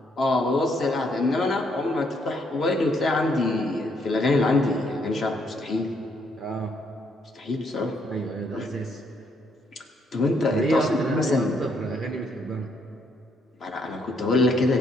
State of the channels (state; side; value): normal; both; correlation 0.72